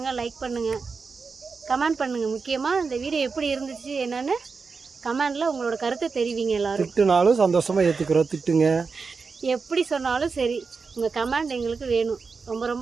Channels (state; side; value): quieter; left; 4.9 dB